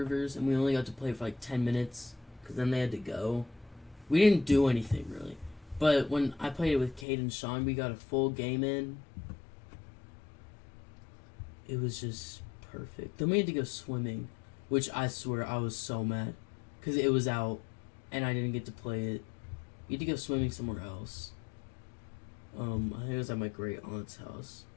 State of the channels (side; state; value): right; drops out; at 7.1 s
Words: and we only got to play for like 10 minutes, because then they had to go. We didn't do anything, really. But when I played it with Cade and Sean, we got a full game in. It was just perfect. Then we had to go swimming, which I swear I was so mad. Because it was out, and I didn't get to play it. We had to go swimming somewhere else. I think it was at my great aunt's house.